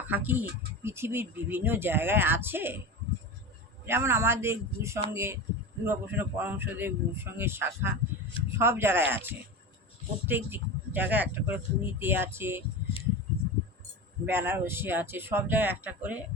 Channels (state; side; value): normal; both; correlation 0.26